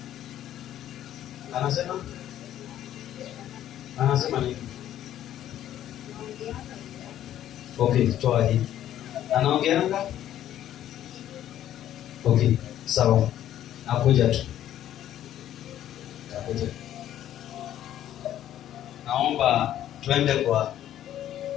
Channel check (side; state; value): right; quieter; 11.8 dB